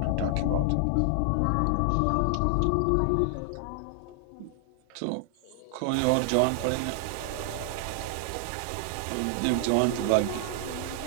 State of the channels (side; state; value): both; different; correlation 0.00